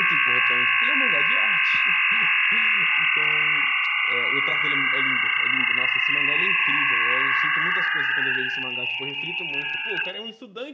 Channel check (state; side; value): identical; both; correlation 1.00